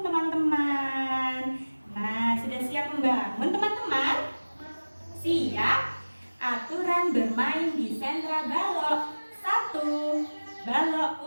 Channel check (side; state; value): both; inverted; correlation -1.00